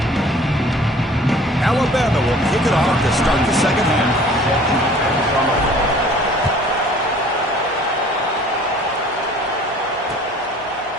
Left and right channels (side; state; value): both; normal; correlation 0.51